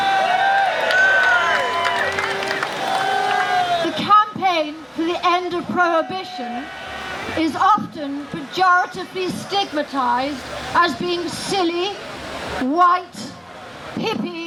The campaign for the end of prohibition is often pejoratively stigmatized as being silly, white,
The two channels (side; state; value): both; identical; correlation 1.00